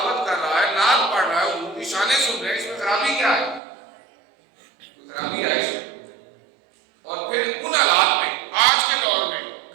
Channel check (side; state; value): left; drops out; at 3.6 s